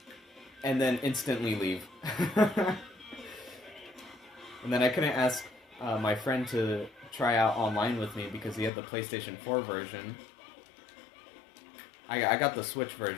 and then instantly leave. And then I couldn't ask my friend to try out online with me because he had the PlayStation 4 version. I got the Switch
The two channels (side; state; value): right; drops out; at 8.7 s